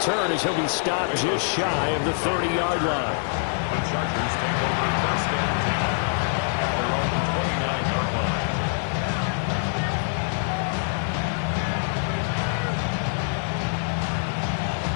as he'll be stopped just shy of the 30-yard line. The Chargers take over 1st and 10 at their own 29-yard line.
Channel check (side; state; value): right; silent; digital silence